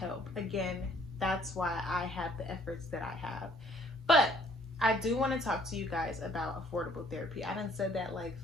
Again, that's why I have the efforts that I have. But I do want to talk to you guys about affordable therapy. I done said that like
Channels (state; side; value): normal; both; correlation 0.61